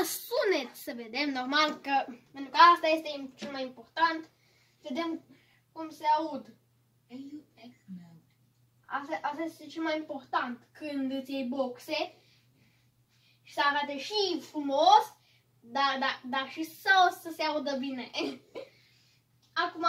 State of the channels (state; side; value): identical; both; correlation 1.00